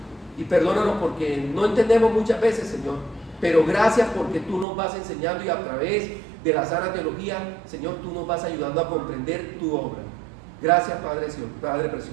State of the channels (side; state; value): left; drops out; at 4.7 s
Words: Y perdónanos porque no entendemos muchas veces, Señor. Pero gracias porque tú nos vas enseñando y a través de la sana teología, Señor, tú nos vas ayudando a comprender tu obra. Gracias, Padre